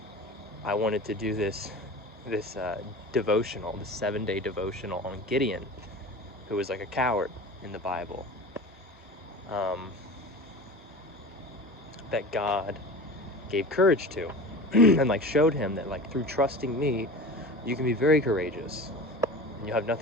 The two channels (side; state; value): both; normal; correlation 0.34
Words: I wanted to do this devotional, this 7-day devotional on Gideon, who was like a coward in the Bible, that God gave courage to, and like showed him that like through trusting me, you can be very courageous, and you have